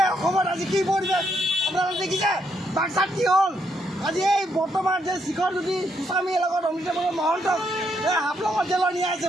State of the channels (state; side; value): normal; both; correlation 0.76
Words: অসমত আজি কি পৰিৱেশ আপোনালোকে দেখিছে? বাক্সাত কি হ'ল? আজি এই বৰ্তমান যে শিখৰজ্যোতি গোস্বামীৰ লগত অমিতাভ মহন্তক এই হাফলঙত জেলত নিয়া হৈছে।